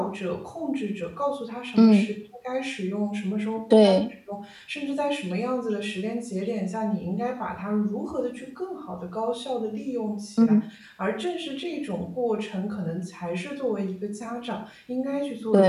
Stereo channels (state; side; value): identical; both; correlation 1.00